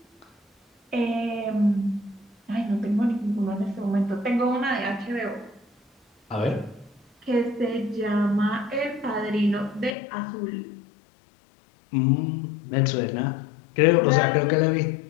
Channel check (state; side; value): drops out; right; at 10.0 s